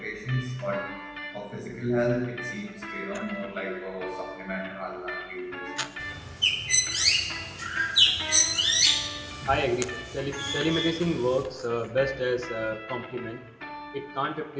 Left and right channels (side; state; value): both; identical; correlation 1.00